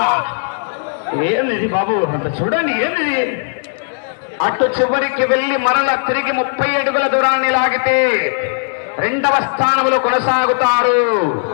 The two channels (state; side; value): silent; right; digital silence